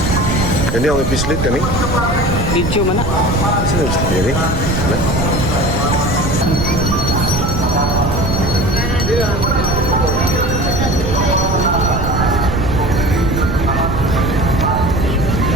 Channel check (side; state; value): right; noise; rumble, 3 dB below the sound